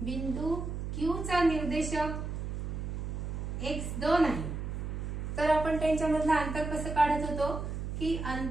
बिंदू Q चा निर्देशक x2 आहे, तर आपण त्यांच्यामधलं अंतर कसं काढत होतो की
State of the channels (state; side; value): noise; right; hum, 4 dB below the sound